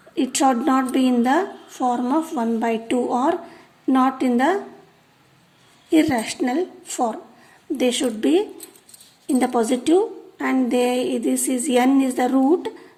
it should not be in the form of 1 by 2 or not in the irrational form. They should be in the positive and this is n is the root.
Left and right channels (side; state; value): both; identical; correlation 1.00